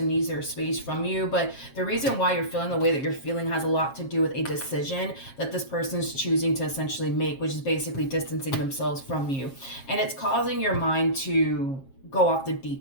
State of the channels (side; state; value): right; late; 7.4 ms